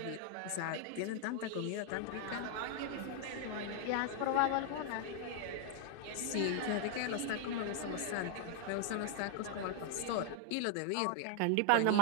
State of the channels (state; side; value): different; both; correlation 0.00